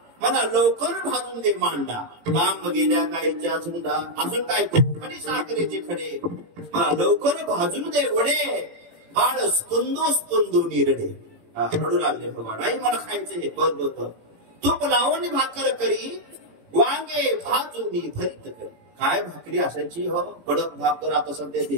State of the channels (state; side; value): late; left; 18 ms